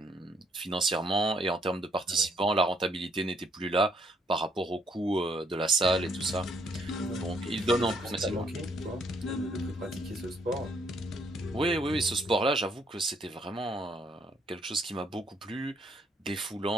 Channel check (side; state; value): both; normal; correlation 0.69